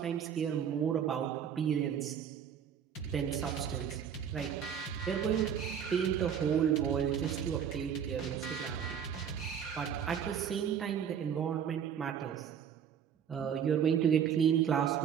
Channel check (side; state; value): left; quieter; 8.2 dB